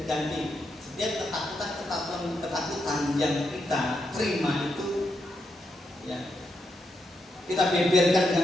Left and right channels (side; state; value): both; normal; correlation 0.82